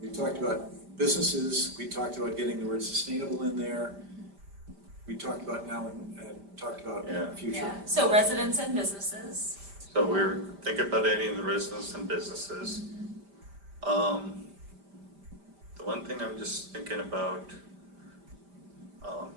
We talked about businesses, we talked about getting the word sustainable in there. We talked about now and talked about future. Yeah, so residents and businesses. So we're thinking about adding the residents and businesses. The one thing I'm just thinking about,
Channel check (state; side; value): late; left; 5.0 ms